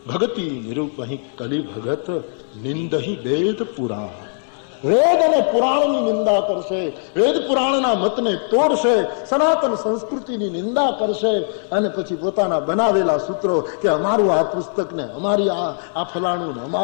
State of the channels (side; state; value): right; silent; 66 dB below the other